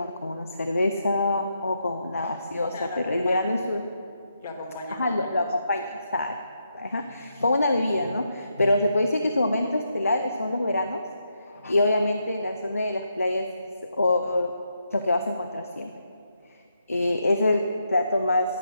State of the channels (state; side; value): inverted; both; correlation -0.81